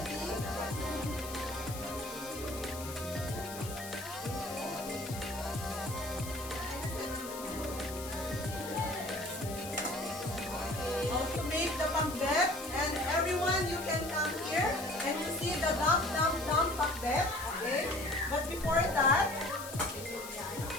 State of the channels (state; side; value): noise; left; hiss, 11 dB below the sound